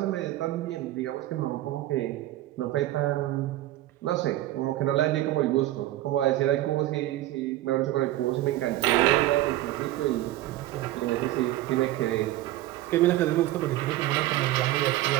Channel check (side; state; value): left; quieter; 15.5 dB